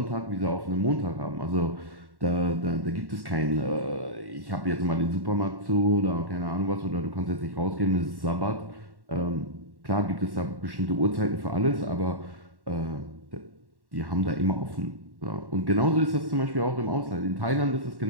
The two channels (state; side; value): late; left; 1.1 ms